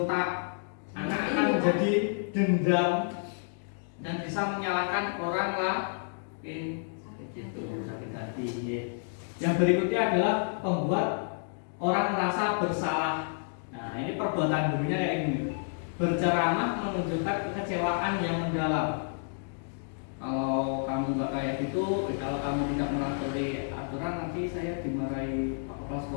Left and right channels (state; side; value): silent; right; digital silence